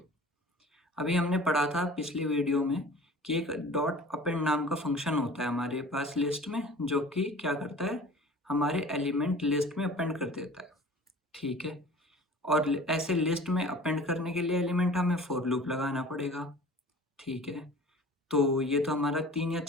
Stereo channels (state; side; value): normal; both; correlation 0.44